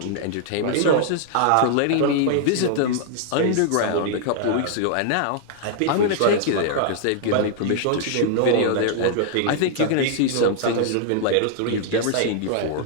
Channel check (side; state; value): both; different; correlation -0.01